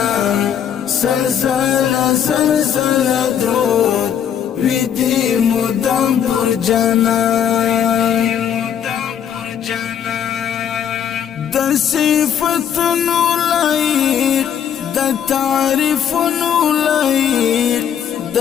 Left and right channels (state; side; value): quieter; right; 8.8 dB